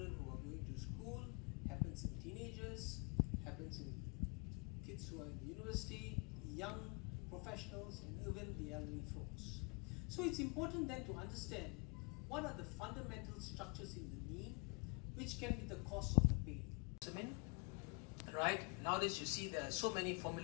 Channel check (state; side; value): quieter; right; 34.2 dB